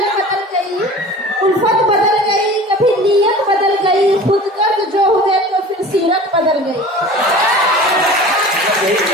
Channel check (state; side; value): normal; both; correlation 0.40